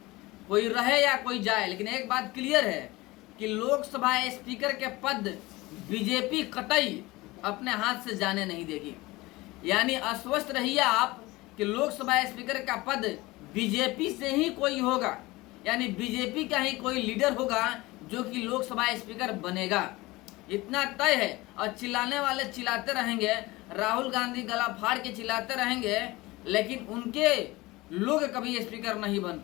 कोई रहे या कोई जाए। लेकिन एक बात क्लियर है कि लोकसभा स्पीकर के पद बीजेपी कतई अपने हाथ से जाने नहीं देगी। यानी आश्वस्त रहिए आप कि लोकसभा स्पीकर का पद बीजेपी से ही कोई होगा, यानी बीजेपी का ही कोई लीडर होगा जो कि लोकसभा स्पीकर बनेगा, इतना तय है। और चिल्लाने वाले चिल्लाते रहेंगे, राहुल गांधी गला फाड़ के चिल्लाते रहेंगे, लेकिन उनके लोग कभी स्पीकर नहीं बन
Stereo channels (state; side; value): quieter; right; 20.8 dB